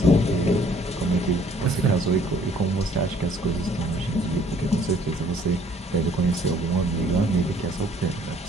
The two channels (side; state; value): both; normal; correlation 0.59